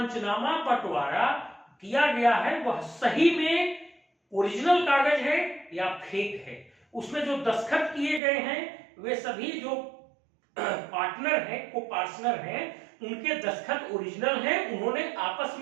बंटवारा किया गया है वह सही में ओरिजिनल कागज है या फेक है। उसमें जो दस्तखत किए गए हैं वे सभी जो पार्टनर हैं, को पार्टनर हैं, उनके दस्तखत ओरिजिनल हैं, उन्होंने आपस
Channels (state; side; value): drops out; left; at 8.2 s